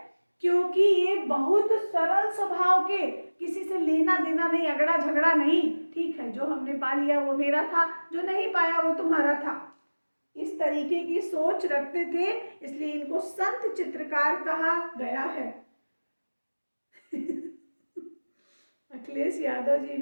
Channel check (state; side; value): inverted; both; correlation -1.00